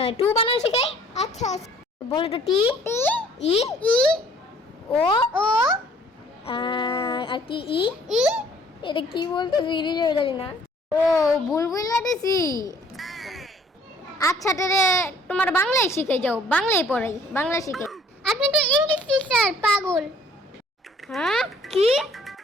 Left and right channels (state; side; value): normal; both; correlation 0.58